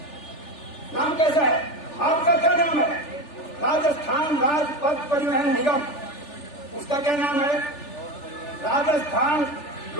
नाम कैसा है? आपका क्या नाम है? राजस्थान राजपथ परिवहन निगम। उसका क्या नाम है? राजस्थान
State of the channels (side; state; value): right; late; 3.4 ms